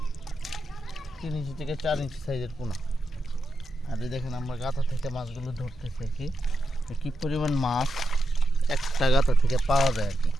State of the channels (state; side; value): normal; both; correlation 0.87